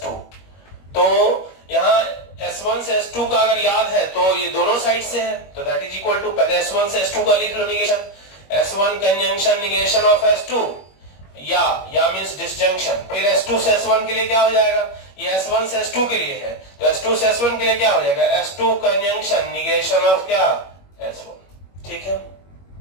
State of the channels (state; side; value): late; right; 21 ms